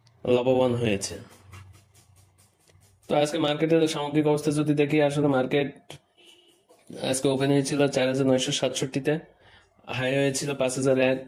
লাভবান হয়েছে। তো আজকে মার্কেটের সামগ্রিক অবস্থা যদি দেখি, আসলে মার্কেট আজকে ওপেন হয়েছিল 4,967-তে, হাই হয়েছিল 5,001,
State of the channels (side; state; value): both; identical; correlation 1.00